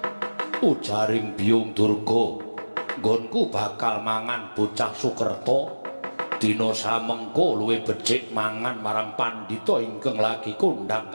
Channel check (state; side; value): inverted; both; correlation -1.00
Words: Ujaring Biyung Durga, nggonku bakal mangan bocah Sukerta. Dina samengko luwih becik mangan marang pandhita ingkang lagi kondhang